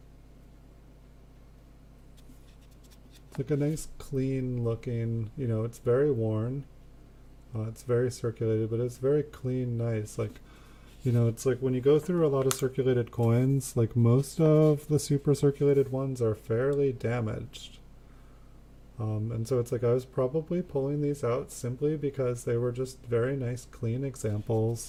It's like a nice clean looking, it's very worn. It's very circulated, but it's very clean, nice. Like, it's like when you go through a lot of circulated coins, like most of the super circulated ones are fairly damaged. And so it's like I was probably pulling these out simply because they were just very nice, clean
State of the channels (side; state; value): both; identical; correlation 1.00